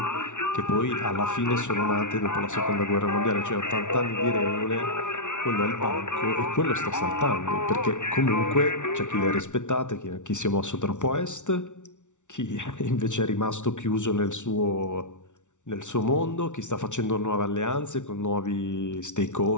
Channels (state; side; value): late; right; 0.86 ms